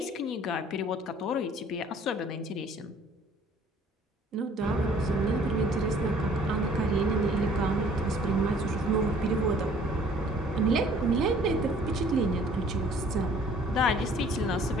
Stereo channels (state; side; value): normal; both; correlation 0.56